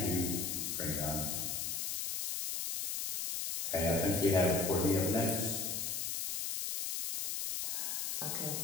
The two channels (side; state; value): left; noise; hiss, 1 dB below the sound